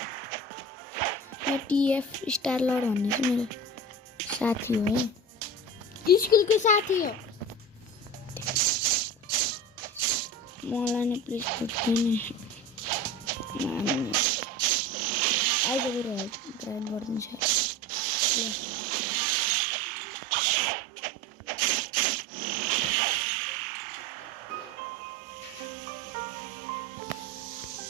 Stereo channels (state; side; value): normal; both; correlation 0.32